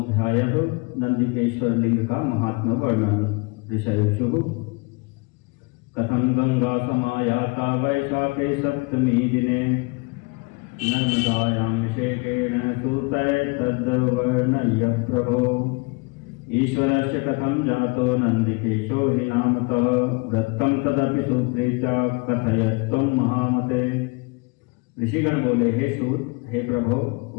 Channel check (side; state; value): right; quieter; 28.6 dB